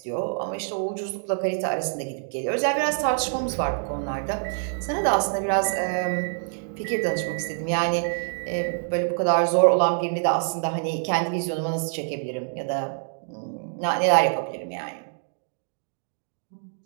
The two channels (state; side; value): silent; left; digital silence